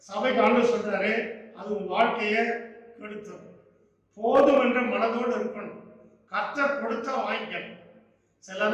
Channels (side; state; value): both; identical; correlation 1.00